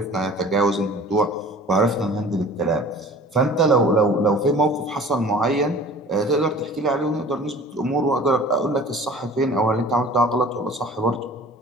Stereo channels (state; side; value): normal; both; correlation 0.45